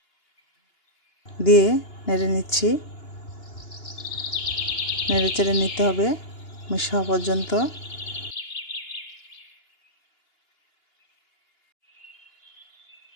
দিয়ে নেড়ে নিচ্ছি। নেড়ে চেড়ে নিতে হবে মিশ হওয়া পর্যন্ত।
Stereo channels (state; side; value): late; right; 2.9 ms